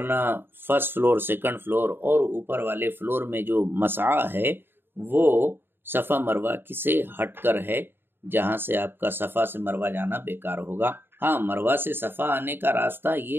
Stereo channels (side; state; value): left; late; 0.10 ms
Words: فرسٹ فلور سیکنڈ فلور اور اوپر والے فلور میں جو مسعی ہے وہ صفا مروہ سے ہٹ کر ہے، جہاں سے آپ کا صفا سے مروہ جانا بیکار ہوگا۔ ہاں، مروہ سے صفا آنے کا راستہ